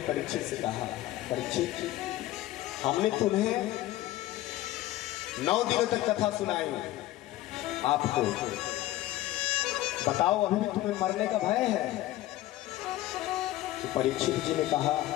परीक्षित से कहा, परीक्षित हमने तुम्हें 9 दिनों तक कथा सुनाई, आपको बताओ अभी भी तुम्हें मरने का भय है? तो परीक्षित जी ने कहा,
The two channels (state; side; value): quieter; right; 15.6 dB